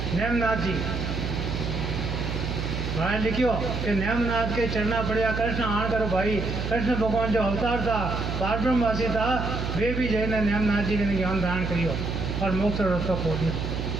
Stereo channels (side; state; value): right; noise; hum, 3 dB below the sound